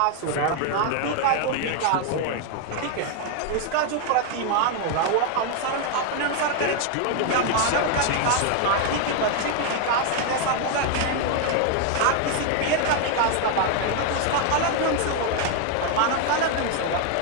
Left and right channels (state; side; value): different; both; correlation 0.00